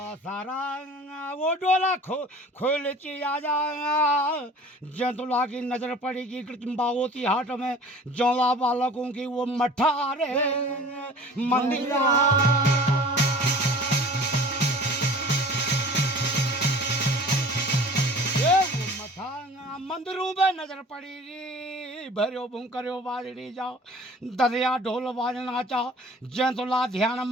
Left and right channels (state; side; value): normal; both; correlation 0.45